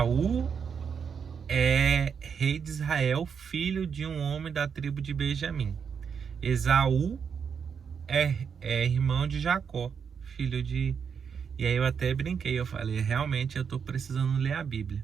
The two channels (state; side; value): quieter; left; 6.7 dB